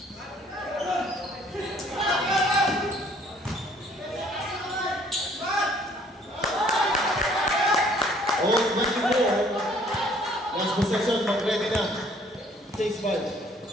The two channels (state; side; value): normal; both; correlation 0.59